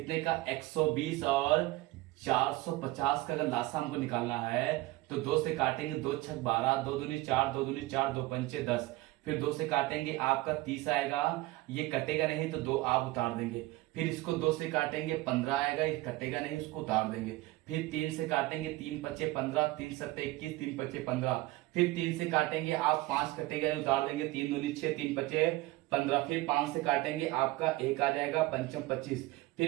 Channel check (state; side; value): quieter; left; 19.2 dB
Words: का 120 और 450 का अगर लासा हमको निकालना है तो 2 से काटेंगे, 2 छक 12, 2 दूनी 4, 2 दूनी 4, 2 पंचे 10, फिर 2 से काटेंगे आपका 30 आएगा, ये कटेगा नहीं तो 2 आप उतार देंगे। फिर इसको 2 से काटेंगे 15 आएगा, ये कटेगा नहीं, उसको उतार देंगे। फिर 3 से काटेंगे, 3 पचे 15, 3 सत्ते 21, 3 पचे 15। फिर 3 से काटेंगे आप 5 कटेगा नहीं, उतार देंगे, 3 दूनी 6, 3 पचे 15। फिर 5 से काटेंगे आपका 1 आ जाएगा, पंचम 25।